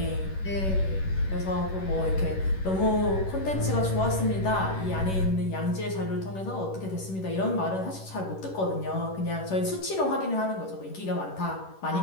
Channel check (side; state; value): right; late; 11 ms